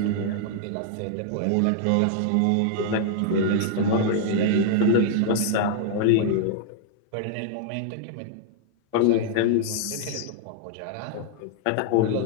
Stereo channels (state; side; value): different; both; correlation -0.01